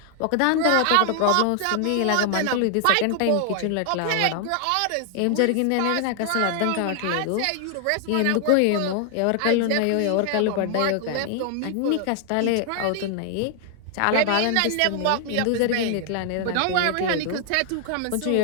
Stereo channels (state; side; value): different; both; correlation 0.00